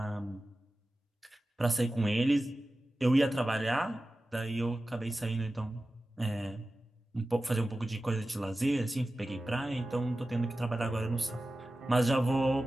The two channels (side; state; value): both; normal; correlation 0.95